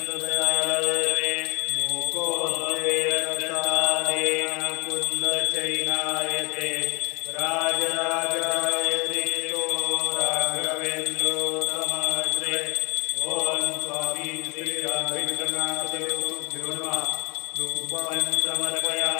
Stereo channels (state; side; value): quieter; right; 29.0 dB